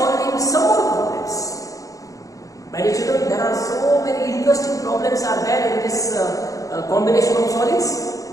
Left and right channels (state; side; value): late; right; 0.16 ms